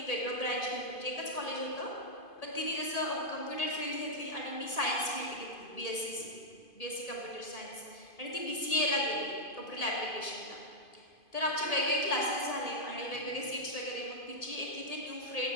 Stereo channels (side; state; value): right; late; 2.5 ms